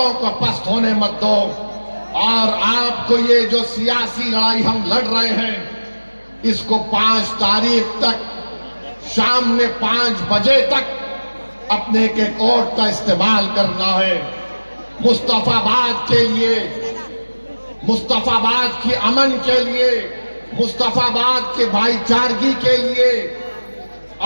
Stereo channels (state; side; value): inverted; both; correlation -1.00